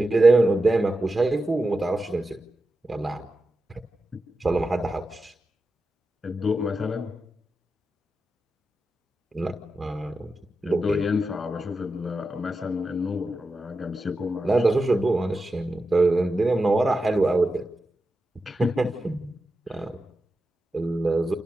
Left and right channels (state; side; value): normal; both; correlation 0.90